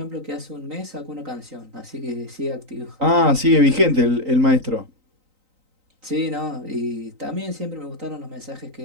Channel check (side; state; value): left; late; 3.9 ms